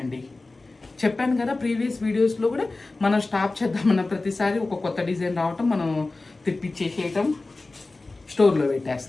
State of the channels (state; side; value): quieter; right; 3.3 dB